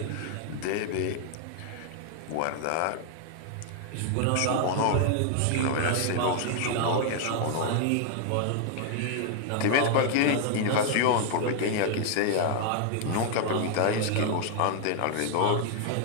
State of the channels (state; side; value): different; both; correlation 0.00